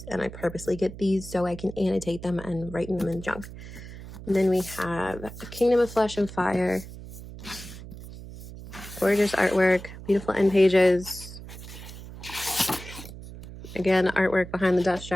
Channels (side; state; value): right; noise; hum, 13 dB below the sound